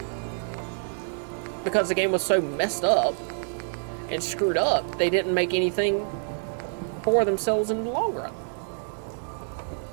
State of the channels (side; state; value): left; silent; digital silence